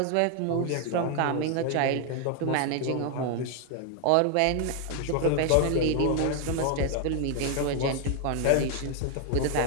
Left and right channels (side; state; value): both; different; correlation 0.00